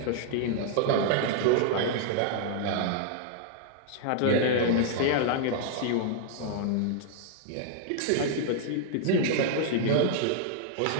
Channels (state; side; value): different; both; correlation -0.01